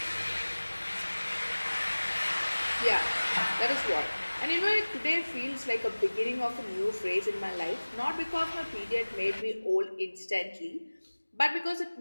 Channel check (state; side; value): inverted; both; correlation -1.00